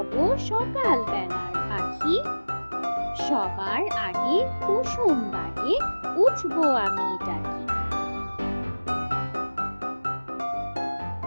সকাল বেলার পাখি, সবার আগে কুসুম বাগে উঠবো আমি ডাকি।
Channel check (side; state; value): both; inverted; correlation -1.00